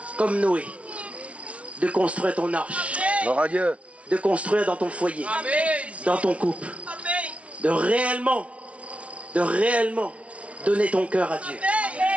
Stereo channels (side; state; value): left; late; 0.063 ms